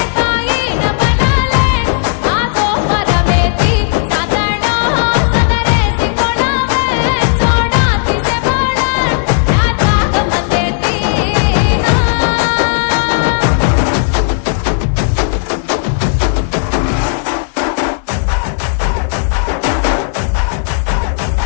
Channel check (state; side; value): silent; right; digital silence